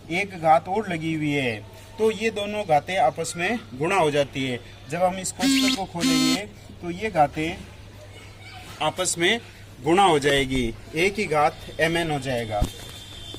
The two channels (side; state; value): both; identical; correlation 1.00